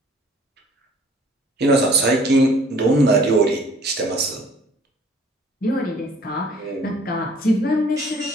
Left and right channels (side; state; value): both; normal; correlation 0.55